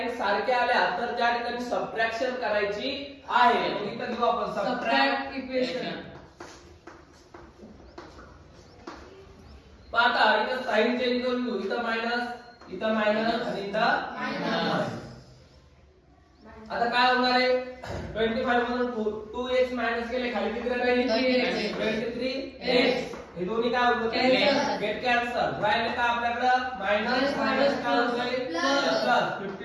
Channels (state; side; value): identical; both; correlation 1.00